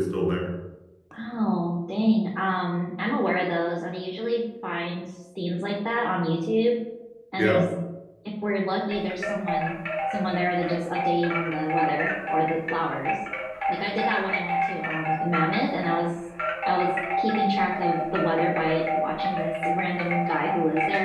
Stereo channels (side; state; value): both; identical; correlation 1.00